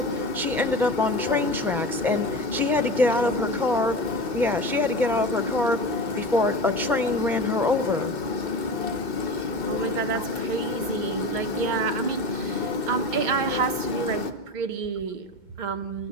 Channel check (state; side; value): late; left; 2.2 ms